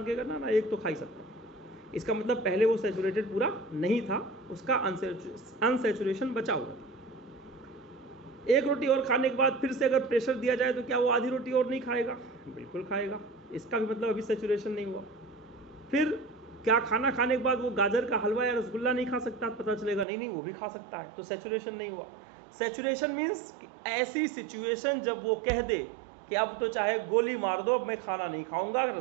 कहेगा ना ना एक तो खा ही सकता हूँ। इसका मतलब पहले वो सैचुरेटेड पूरा नहीं था, उसका अनसैचुरेशन बचा हुआ था। एक रोटी और खाने के बाद फिर से अगर प्रेशर दिया जाए तो क्या वो आधी रोटी और नहीं खाएगा? बिल्कुल खाएगा। इसका भी मतलब अभी सैचुरेशन नहीं हुआ। फिर क्या खाना खाने के बाद वो गाजर का हलवा या रसगुल्ला नहीं खा सकता? पता चलेगा नहीं नहीं वो भी खा सकता है, तो सैचुरेशन नहीं हुआ। सैचुरेशन मीन्स ऐसी सिचुएशन जब वो कह दे कि अब तो चाहे गोली मार दो, अब मैं खाना नहीं खाऊंगा,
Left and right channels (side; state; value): left; drops out; at 20.1 s